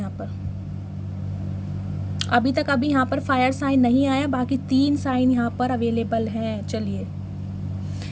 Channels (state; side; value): identical; both; correlation 1.00